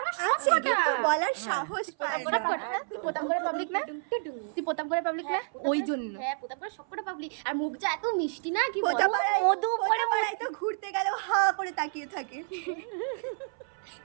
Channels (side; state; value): left; silent; 57 dB below the other